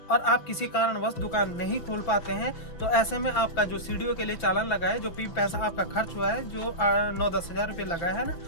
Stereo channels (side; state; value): right; late; 6.0 ms